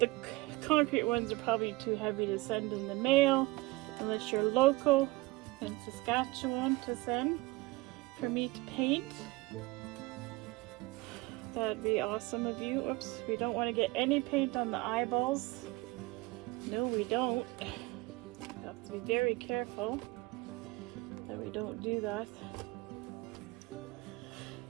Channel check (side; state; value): left; quieter; 21.9 dB